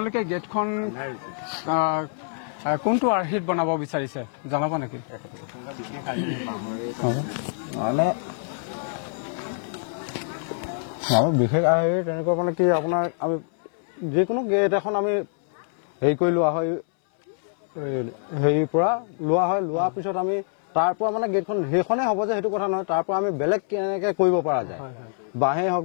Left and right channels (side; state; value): right; silent; 62 dB below the other